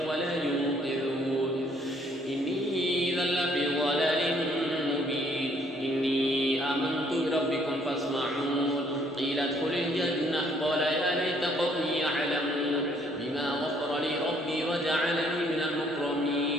ولا ينقذون إني إذا لفي ضلال مبين إني آمنت بربكم فاسمعون قيل ادخل الجنة قال يا ليت قومي يعلمون بما غفر لي ربي وجعلني من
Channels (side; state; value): both; normal; correlation 0.65